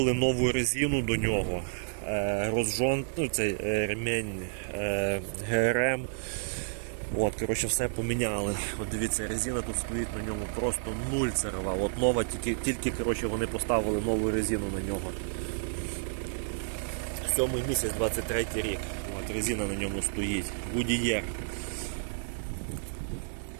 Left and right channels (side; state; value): left; silent; digital silence